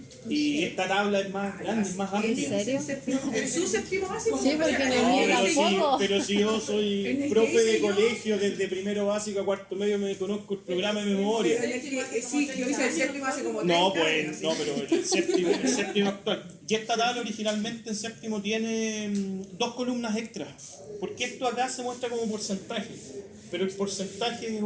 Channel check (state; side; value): identical; both; correlation 1.00